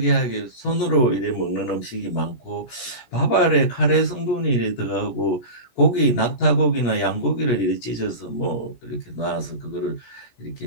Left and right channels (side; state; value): right; late; 17 ms